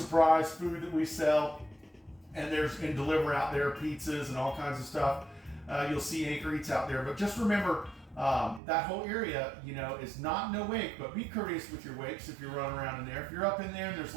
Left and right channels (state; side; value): drops out; left; at 8.6 s